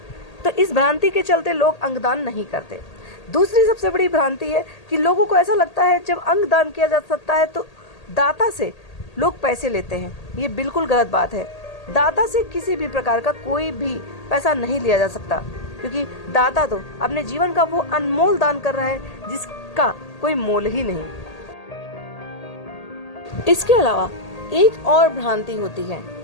तो इस भ्रांति के चलते लोग अंगदान नहीं करते। दूसरी सबसे बड़ी भ्रांति है कि लोगों को ऐसा लगता है जब अंगदान किया जा सकता है तो दाता से लोग पैसे लेते हैं। ये बिल्कुल गलत बात है। दाता से किसी भी प्रकार का कोई भी पैसा नहीं लिया जा सकता, क्योंकि दाता तो अपने जीवन का वो अनमोल दान कर रहा है जिसका कोई मोल ही नहीं। इसके अलावा एक और भ्रांति होती है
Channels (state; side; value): late; right; 1.8 ms